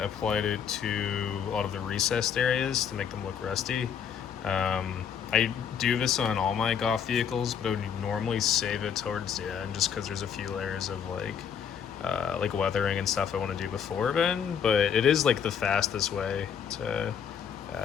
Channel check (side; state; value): right; quieter; 7.8 dB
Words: it to a lot of the recessed areas to make them look rusty. I do this on all my Goff vehicles, but I would normally save it towards the end just because there's a few layers of like weathering and stuff I want to do before then, but it is like the fastest way to